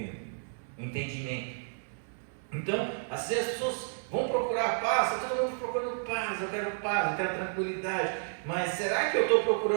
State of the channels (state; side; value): silent; left; digital silence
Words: entendimento. Então, assim as pessoas vão procurar paz, está todo mundo procurando paz, eu quero tranquilidade. Mas será que eu estou